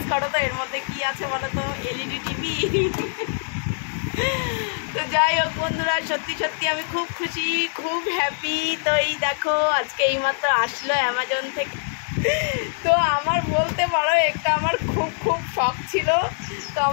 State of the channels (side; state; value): right; silent; digital silence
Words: করো তো এর মধ্যে কি আছে বলো তো। LED TV. তো যাই হোক বন্ধুরা, সত্যি সত্যি আমি খুব খুশি, খুব হ্যাপি। তো এই দেখো আজকে এইমাত্র আসলো অ্যামাজন থেকে। তো আমার বলতে পারো একটা আমার খুব খুব শখ ছিল। তো